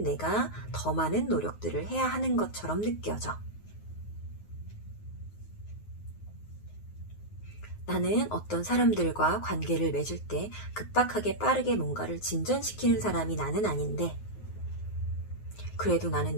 내가 더 많은 노력들을 해야 하는 것처럼 느껴져. 나는 어떤 사람들과 관계를 맺을 때 급박하게 빠르게 뭔가를 진전시키는 사람이 나는 아닌데 그래도 나는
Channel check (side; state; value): right; late; 9.5 ms